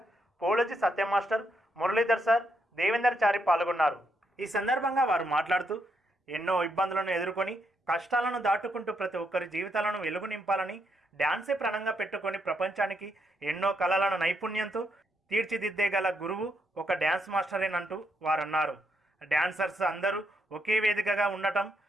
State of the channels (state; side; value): normal; both; correlation 0.78